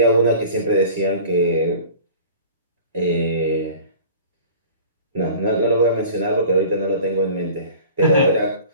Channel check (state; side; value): inverted; both; correlation -0.43